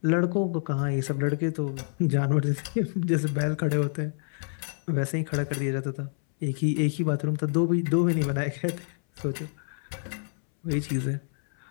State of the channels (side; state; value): right; silent; 60 dB below the other